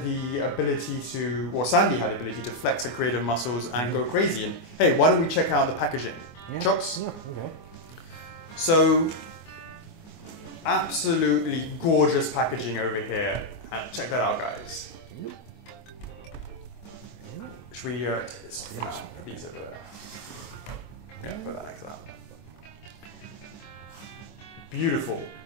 the ability to, or Sandy had the ability to flex her creative muscles and go crazy. And hey, why don't we check out the packaging? Yeah. Chocks? Yeah, okay. So, absolutely gorgeous packaging over here. And check that out, guys. Should we take this for now? Put these over there. Yeah, put that next to that. Beautiful.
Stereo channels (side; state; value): right; late; 24 ms